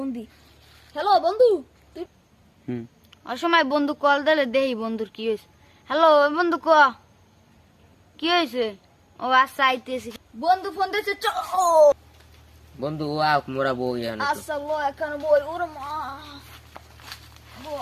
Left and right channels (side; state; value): both; identical; correlation 1.00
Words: দি। হ্যালো বন্ধু, তুই অসময় বন্ধু কল দিলে দেই বন্ধুর কি হয়েছে। হ্যালো বন্ধু ক কি হয়েছে? ও আচ্ছা আইতেছি। বন্ধু ফোন দিছে চ। বন্ধু ও আক মোরা বউ ইয়ানো তো। আচ্ছা ল একখানে বই ওরে মা